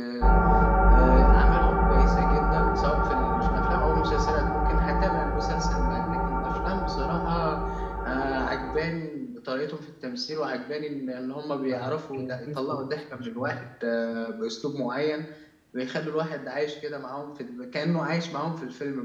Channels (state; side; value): identical; both; correlation 1.00